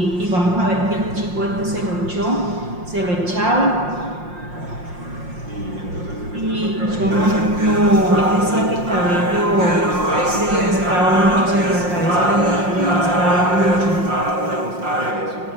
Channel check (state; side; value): late; left; 5.6 ms